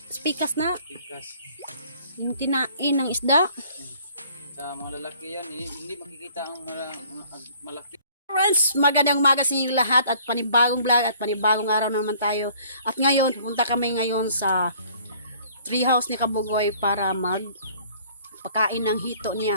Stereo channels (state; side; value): inverted; both; correlation -0.56